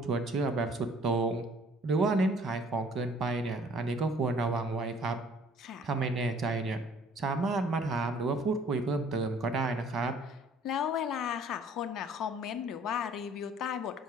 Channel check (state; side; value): normal; both; correlation 0.55